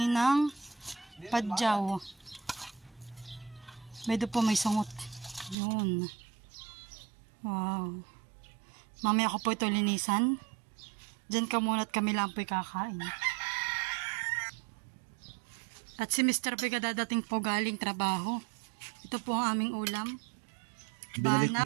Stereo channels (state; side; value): drops out; left; at 5.6 s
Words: padyaw. Medyo po may sungot. Yun. Wow. Mamaya ko po ito linisan. Diyan ka muna at kami lang po'y kakain. At si Mr. Pega dadating po galing trabaho. Ito po ang aming ulam.